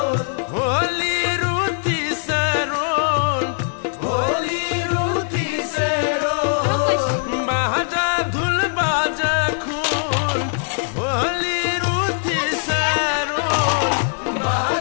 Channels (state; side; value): silent; right; 63 dB below the other